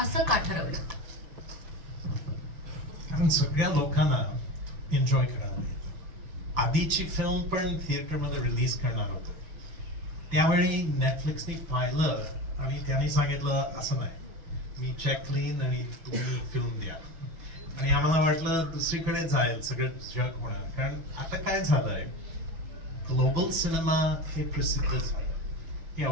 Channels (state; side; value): late; left; 6.1 ms